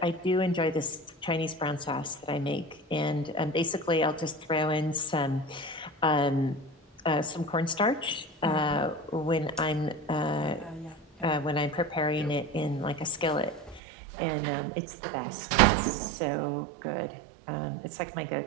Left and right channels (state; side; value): drops out; left; at 13.8 s